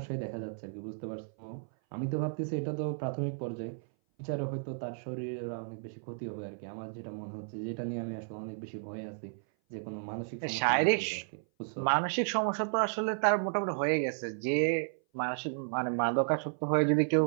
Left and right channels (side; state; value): left; silent; 56 dB below the other